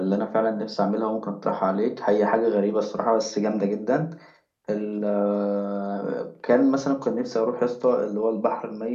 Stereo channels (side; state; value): both; identical; correlation 1.00